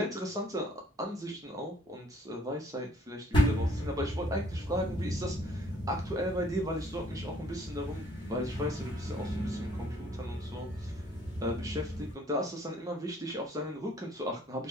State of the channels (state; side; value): normal; both; correlation 0.62